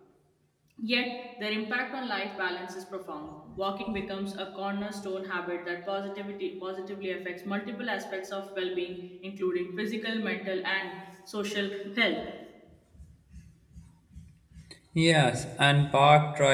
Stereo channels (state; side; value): identical; both; correlation 1.00